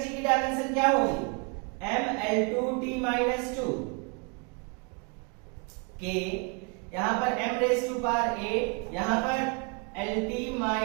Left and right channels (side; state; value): left; quieter; 33.9 dB